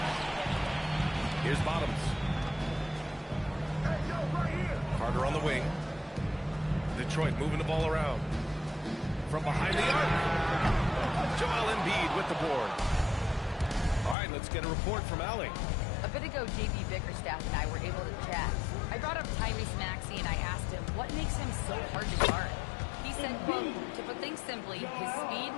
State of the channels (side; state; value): right; drops out; at 14.2 s